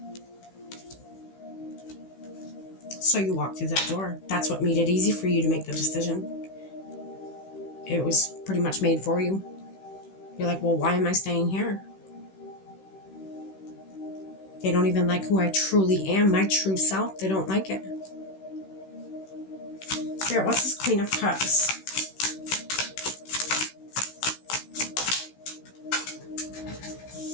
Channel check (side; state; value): right; late; 16 ms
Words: So you walked through that door. That's what made it easy for you to make the decision. It was pretty much made for you. You're like, well, why am I staying here? They don't even like who I truly am, my true self. They don't like it. Spirit, what's this Queen of Cups?